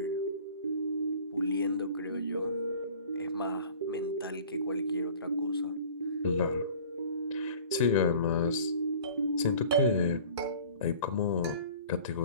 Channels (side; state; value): both; inverted; correlation -0.46